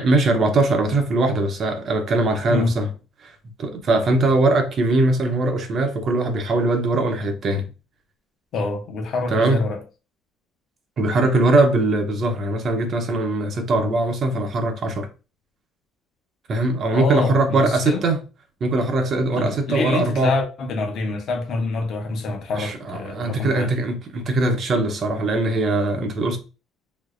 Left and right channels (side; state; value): both; normal; correlation 0.65